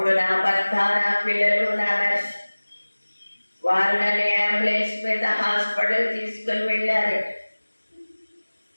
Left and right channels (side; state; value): both; inverted; correlation -1.00